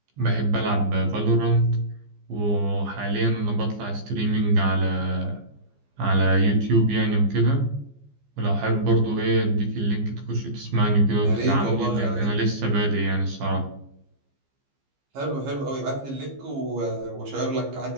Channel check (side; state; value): left; late; 15 ms